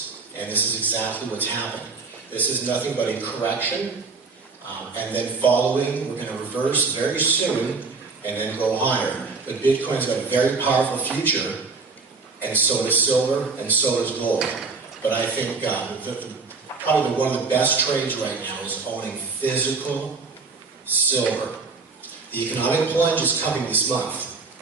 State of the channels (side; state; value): left; quieter; 4.4 dB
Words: And this is exactly what's happened. This is nothing but a correction, and then following, we're going to reverse very soon, and then go higher. But Bitcoin's got a very powerful future, and so does silver, and so does gold. But I think probably one of the best trades right now is owning physical silver. The economic plunge is coming this month,